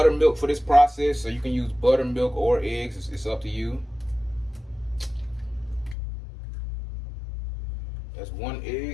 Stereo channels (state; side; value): drops out; right; at 6.0 s